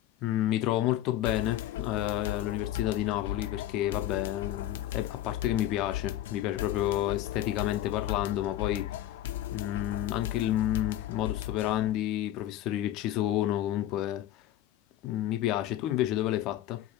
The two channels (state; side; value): quieter; right; 13.1 dB